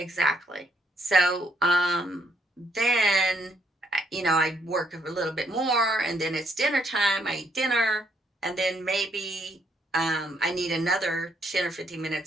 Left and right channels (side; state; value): both; normal; correlation 0.72